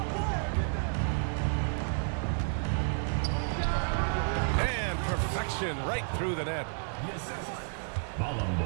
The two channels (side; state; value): left; silent; 57 dB below the other